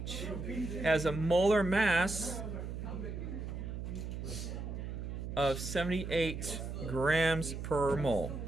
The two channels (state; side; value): noise; right; hum, 6 dB below the sound